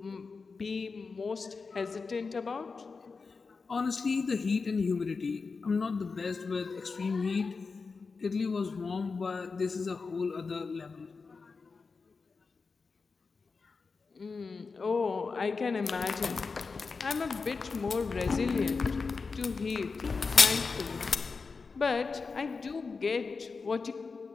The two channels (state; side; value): quieter; right; 4.6 dB